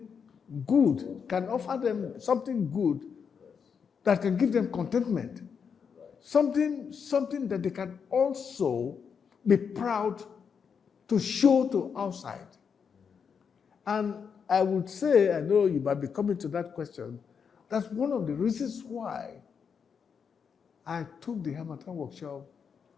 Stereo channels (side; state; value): right; quieter; 6.5 dB